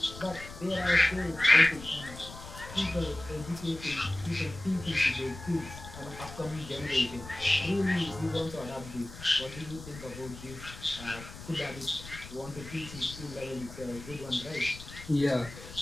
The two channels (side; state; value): left; noise; rumble, 14 dB below the sound